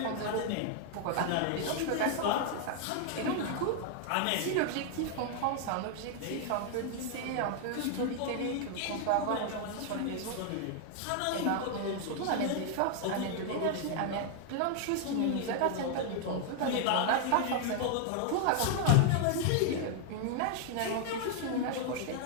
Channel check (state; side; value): different; both; correlation 0.00